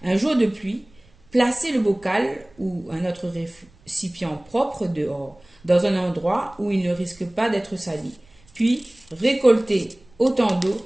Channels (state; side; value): noise; right; rumble, 30 dB below the sound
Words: Un jour de pluie, placez le bocal ou un autre récipient propre dehors, dans un endroit où il ne risque pas d'être sali. Puis, récoltez autant